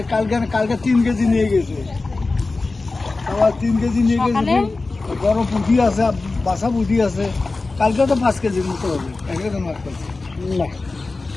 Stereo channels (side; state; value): right; quieter; 3.5 dB